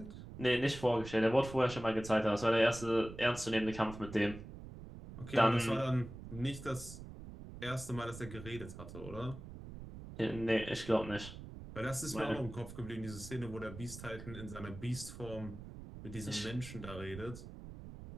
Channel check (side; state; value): right; noise; rumble, 12 dB below the sound